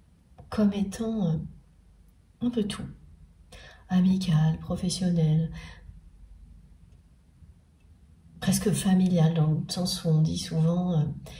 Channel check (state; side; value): identical; both; correlation 1.00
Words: comme étant un peu tout. Amical, professionnel, presque familial, dans le sens où on dit souvent